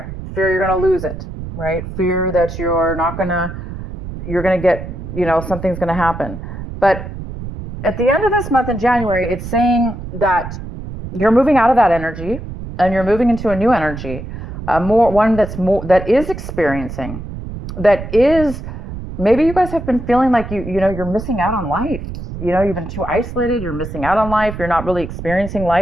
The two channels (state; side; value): noise; right; rumble, 9 dB below the sound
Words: Fear you're going to lose it, right? Fear that you're going to get, something's going to happen. But at the end of this month in January, it's saying that you're moving out of that energy and you're moving into a new energy, that is experiencing, that is, maybe you guys have been feeling like you're missing out on life. You've been too isolated. You're missing out on life. You're not really experiencing